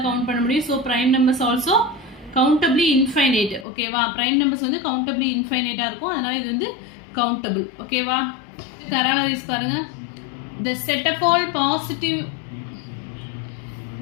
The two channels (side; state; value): right; drops out; at 3.7 s